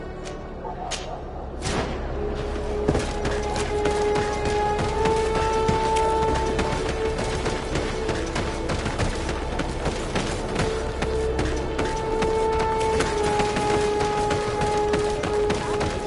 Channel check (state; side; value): identical; both; correlation 1.00